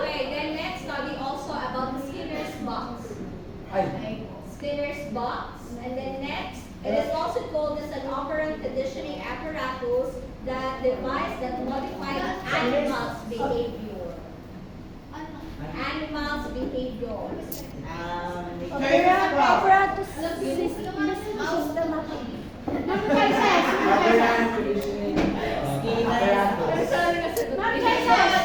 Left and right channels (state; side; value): identical; both; correlation 1.00